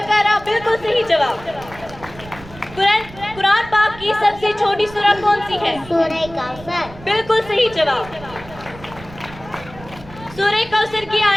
بالکل صحیح جواب. قرآن پاک کی سب سے چھوٹی سورت کون سی ہے؟ سورہ کوثر. بالکل صحیح جواب. سورہ کوثر کی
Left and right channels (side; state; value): right; noise; rumble, 18 dB below the sound